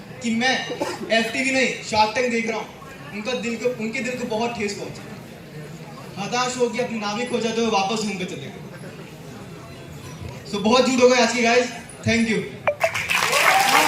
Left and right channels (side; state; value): both; identical; correlation 1.00